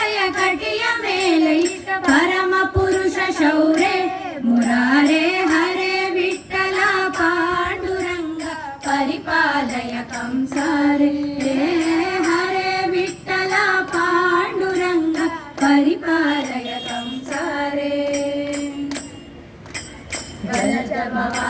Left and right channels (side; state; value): both; identical; correlation 1.00